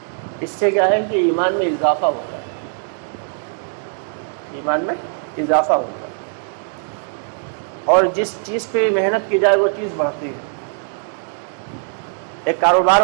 اس سے کیا ہے کہ ایمان میں اضافہ ہوتا ہے، ایمان میں اضافہ ہوتا ہے، اور جس چیز پہ محنت کی جائے وہ چیز بڑھتی ہے. ایک کاروبار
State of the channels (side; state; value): left; silent; 62 dB below the other